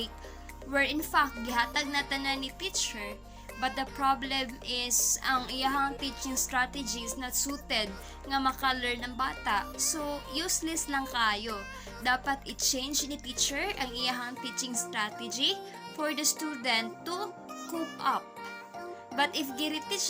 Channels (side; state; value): both; identical; correlation 1.00